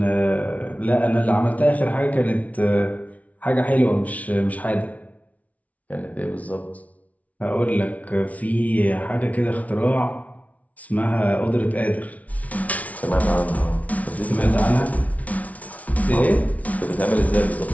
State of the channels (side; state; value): right; late; 0.069 ms